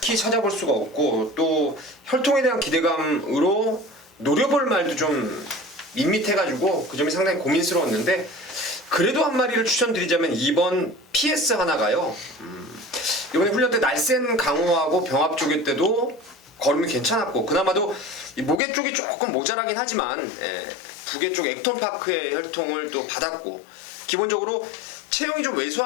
찾아볼 수가 없고, 또 혈통에 대한 기대감으로 노려볼 말도 좀 밋밋해가지고 그 점이 상당히 고민스러웠는데, 그래도 한 마리를 추천드리자면 2번 PS 하나가요. 이번에 훈련 때 날쌘 강호하고 병합 조개 때도 걸음이 괜찮았고 그나마도 이 무게 쪽이 조금 모자라긴 하지만 부계 쪽 액톤파크의 혈통을 또 받았고 기본적으로 체형이 좀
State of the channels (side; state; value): right; drops out; at 18.6 s